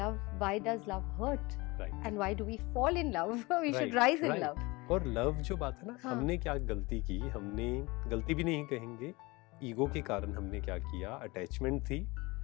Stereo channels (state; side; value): quieter; right; 23.8 dB